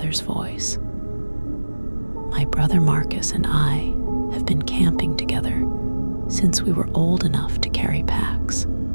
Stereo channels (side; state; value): both; inverted; correlation -1.00